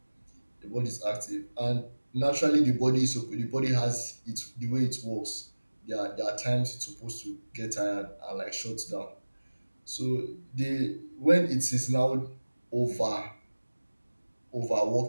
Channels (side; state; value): both; inverted; correlation -1.00